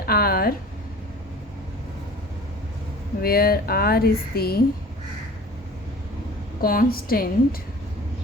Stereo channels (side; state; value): both; normal; correlation 0.44